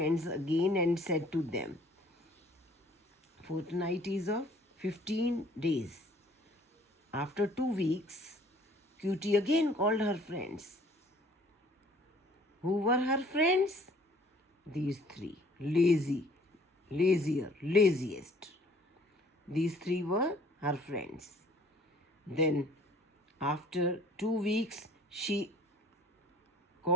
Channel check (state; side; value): normal; both; correlation 0.56